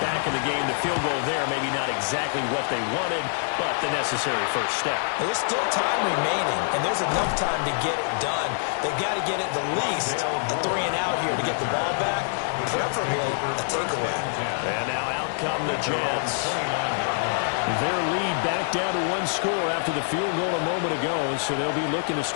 back in the game. The field goal there, maybe not exactly what they wanted, but the necessary first step. There's still time remaining, and there's enough time to get it done. They've got to get at the least a 3 and out here to get the ball back, preferably a takeaway. And now out come the Jets. Their lead back down to 1 score after the field goal a moment ago, so they'll be looking to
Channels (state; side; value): silent; right; digital silence